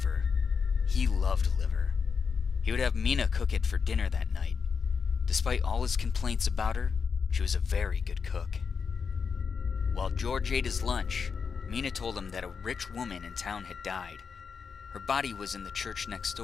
He loved liver. He would have Mina cook it for dinner that night. Despite all his complaints about her, she was a very good cook. While George ate his lunch, Mina told him that a rich woman in town had died. Her body was in the church next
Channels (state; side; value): quieter; right; 5.8 dB